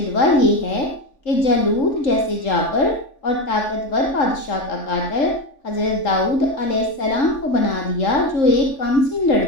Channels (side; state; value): right; late; 3.5 ms